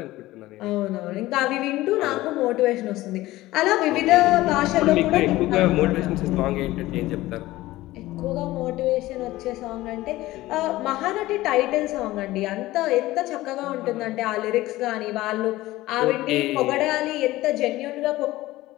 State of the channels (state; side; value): quieter; right; 17.3 dB